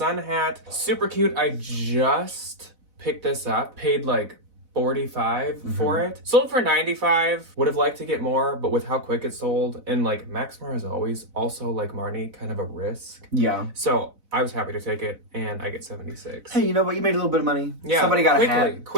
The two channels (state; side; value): late; left; 4.0 ms